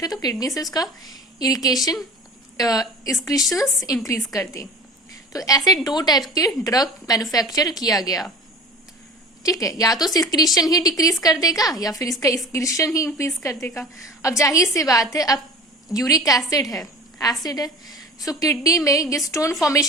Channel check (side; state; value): both; normal; correlation 0.38